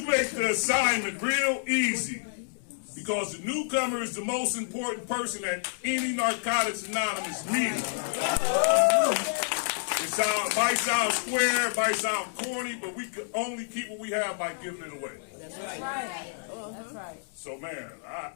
make the assignment real easy, because the newcomer is the most important person at any Narcotics Anonymous meeting. It might sound square, might sound corny, but we can only keep what we have by giving it away. That's right. That's right. So man,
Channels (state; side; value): silent; right; digital silence